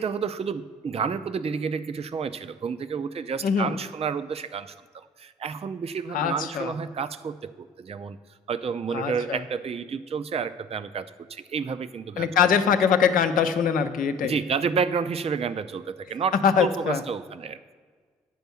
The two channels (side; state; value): both; normal; correlation 0.43